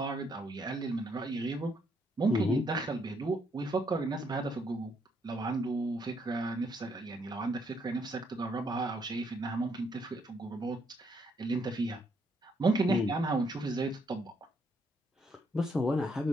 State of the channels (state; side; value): normal; both; correlation 0.73